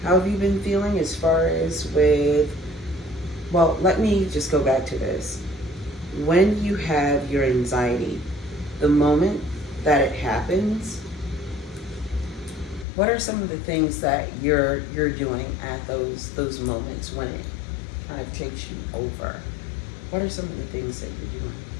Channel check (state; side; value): drops out; right; at 12.9 s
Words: How have you been feeling as far as with? Well, let me just go back to this. when you have your anxiety, the moment that it happens, what are some of the things that you're doing at those moments when it kind of takes you over? What are some of the things that you're doing